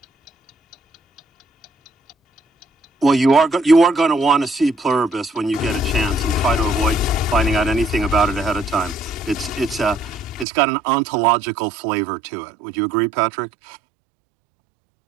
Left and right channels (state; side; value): drops out; left; at 10.5 s